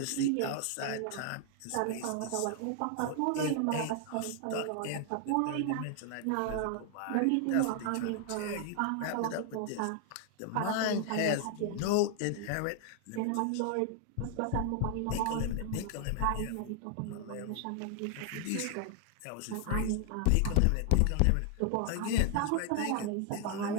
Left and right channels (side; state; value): both; different; correlation 0.00